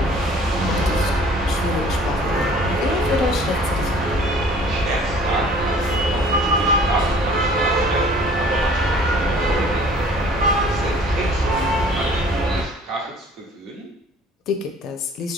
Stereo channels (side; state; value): both; normal; correlation 0.51